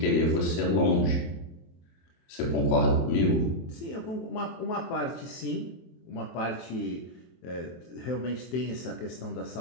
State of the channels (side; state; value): right; late; 23 ms